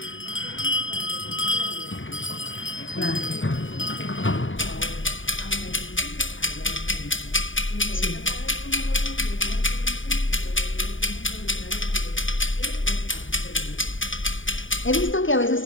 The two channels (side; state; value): right; late; 0.57 ms